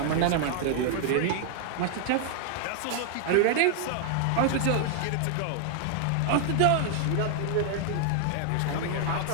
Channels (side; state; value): both; different; correlation 0.00